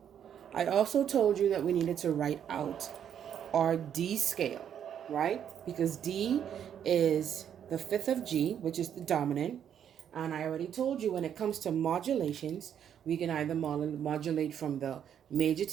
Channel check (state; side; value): quieter; left; 9.1 dB